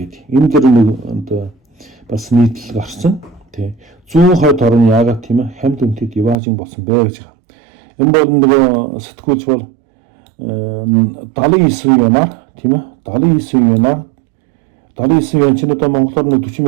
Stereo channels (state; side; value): drops out; left; at 6.4 s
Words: Энэ дэр нэг одоо бас нийтлэл гарсан. Тий. Зүүн хойд орн яагаад тийм ээ хамд үнэтэй Диважин болсон бэ гэж байна. Энэ бол нөгөө сэтгүүлч бол 79 янаар тийм ээ 79 янаар 79 ян чинь одоо монголоор 40